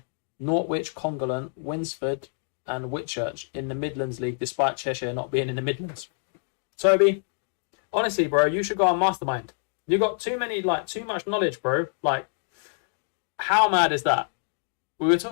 Norwich, Congolland, Winsford and Whitchurch in the Midlands League despite Cheshire not being in the Midlands. Toby, honestly bro, you should go on Mastermind. You got too much knowledge, bro. Like, how mad is that? We were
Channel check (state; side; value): silent; right; 61 dB below the other